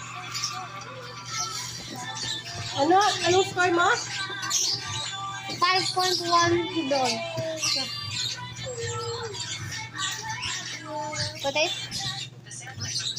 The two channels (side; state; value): both; identical; correlation 1.00